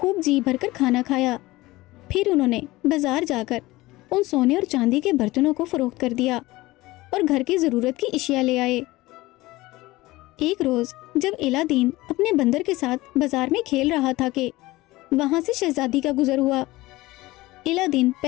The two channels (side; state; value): right; quieter; 19.2 dB